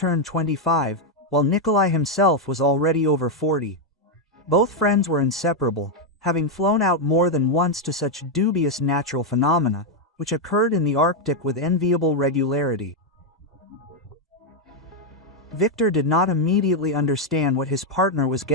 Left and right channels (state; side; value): normal; both; correlation 0.02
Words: 25, while Nikolai himself was already over 40. Both friends were inseparable, having flown out more than once to such dubious natural phenomena, which occurred in the Arctic with enviable regularity. Victor did not immediately understand what his partner was